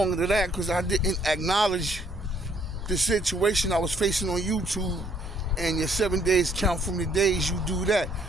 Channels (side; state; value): both; normal; correlation 0.66